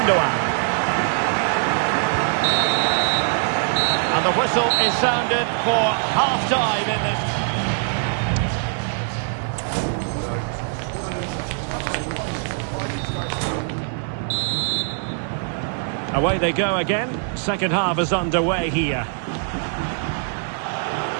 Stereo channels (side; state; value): left; silent; 63 dB below the other